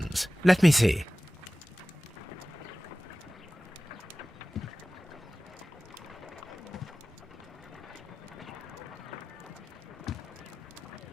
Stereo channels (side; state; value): both; normal; correlation 0.97